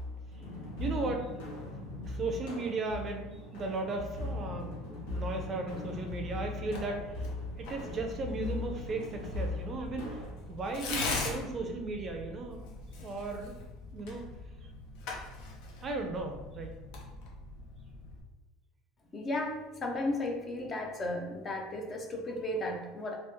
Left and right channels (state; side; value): normal; both; correlation 0.50